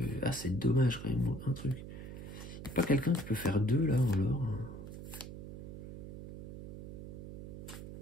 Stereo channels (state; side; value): noise; right; hum, 10 dB below the sound